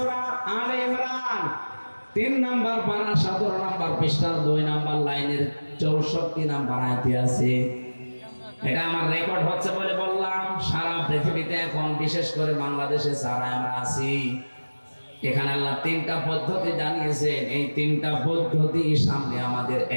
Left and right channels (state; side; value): inverted; both; correlation -1.00